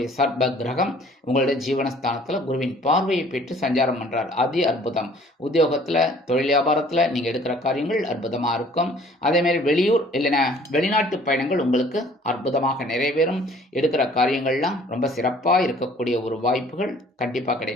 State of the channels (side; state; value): both; normal; correlation 0.55